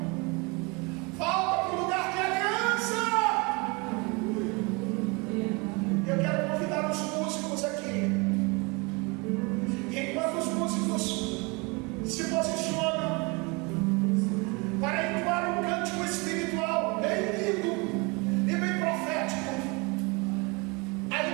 Volta para o lugar de aliança. Eu quero convidar os músicos aqui. E enquanto os músicos se posicionam,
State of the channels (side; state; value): left; quieter; 28.3 dB